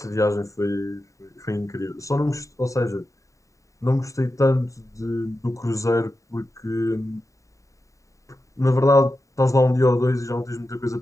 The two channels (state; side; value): late; right; 0.16 ms